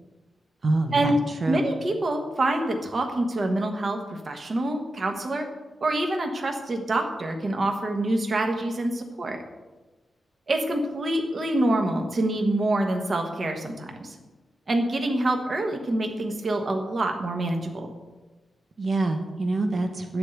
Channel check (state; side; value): normal; both; correlation 0.90